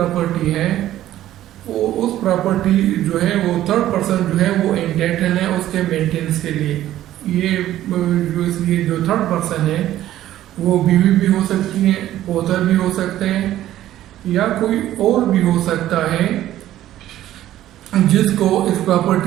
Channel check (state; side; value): quieter; left; 13.3 dB